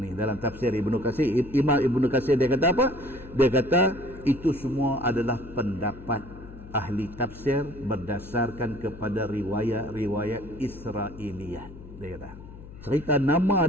dalam tafsir Ibnu Katsir, Imam Ibnu Katsir dia kata apa? Dia kata itu semua adalah pendapat ahli tafsir berdasarkan kepada riwayat-riwayat Israiliyat. Dia kata cerita nama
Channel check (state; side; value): noise; left; hum, 16 dB below the sound